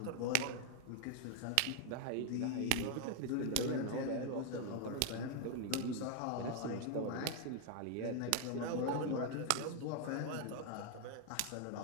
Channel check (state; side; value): different; both; correlation 0.00